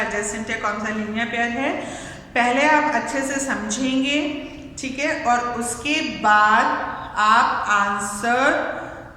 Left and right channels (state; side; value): identical; both; correlation 1.00